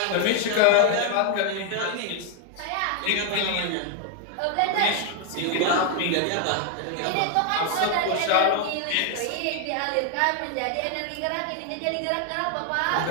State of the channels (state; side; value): different; both; correlation 0.00